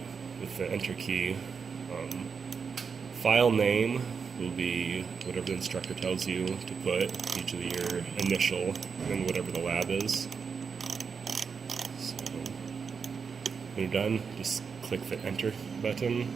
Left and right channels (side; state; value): left; quieter; 5.8 dB